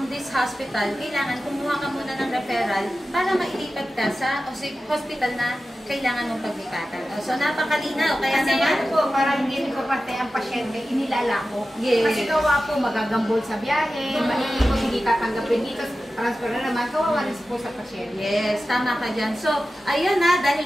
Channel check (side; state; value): both; normal; correlation 0.94